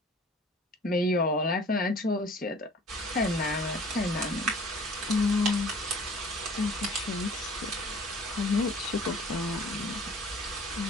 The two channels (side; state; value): both; normal; correlation 0.48